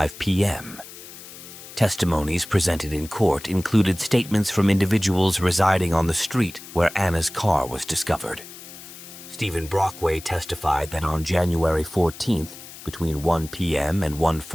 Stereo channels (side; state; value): left; noise; hiss, 16 dB below the sound